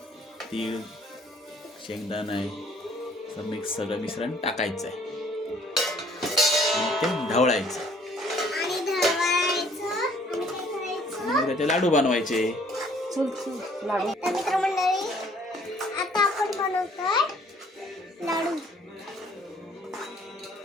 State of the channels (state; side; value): normal; both; correlation 0.60